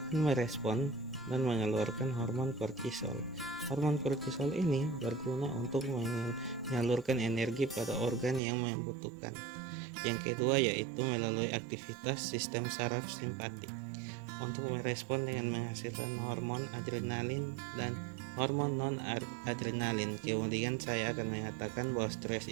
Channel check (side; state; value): left; drops out; at 8.4 s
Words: merespon dan mengeluarkan hormon kortisol. Hormon kortisol ini berguna untuk menyalurkan energi pada organ yang membutuhkan. Yang kedua yaitu melalui aktivitas sistem saraf simpatik untuk merespon dengan menghasilkan hormon adrenalin dan hormon non-adrenalin. Kemudian saya akan mengatakan bahwa stres